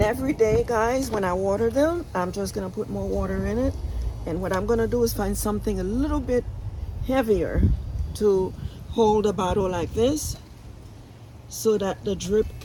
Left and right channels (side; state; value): both; identical; correlation 1.00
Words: every day, guys, when I water them, I'm just going to put more water in it. And what I'm going to do is find something a little bit heavier to hold a bottle like this so that the drip